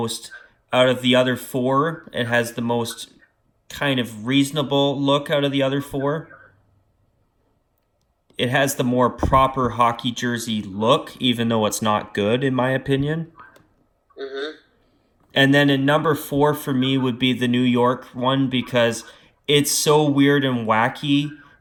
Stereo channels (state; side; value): identical; both; correlation 1.00